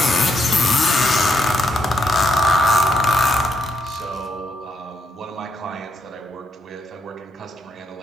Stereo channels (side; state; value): both; normal; correlation 0.76